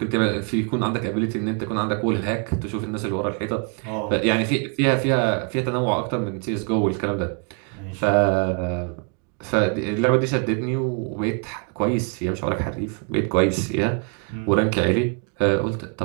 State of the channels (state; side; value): quieter; left; 36.8 dB